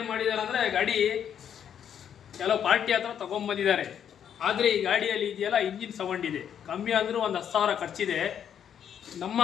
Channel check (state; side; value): quieter; right; 8.9 dB